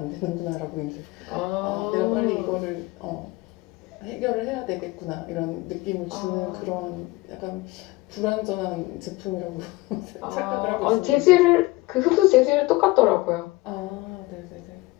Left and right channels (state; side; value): quieter; right; 21.4 dB